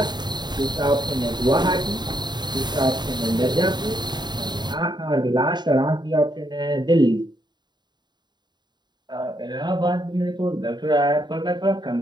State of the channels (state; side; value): late; left; 0.21 ms